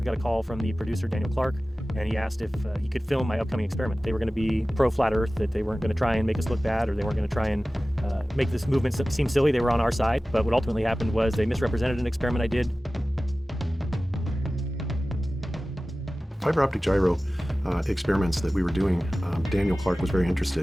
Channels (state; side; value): normal; both; correlation 0.96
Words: got a call from the producer, Daniel Clark, and he asked if he could film my upcoming experiment. They were going to be pro-flat Earth, that they weren't going to try and make us look bad, or they weren't going to try and make this movement seem silly. They were on our side. But what ultimately happened was they misrepresented an experiment I did. Fiber optic gyro experiments that we were doing, Daniel Clark was very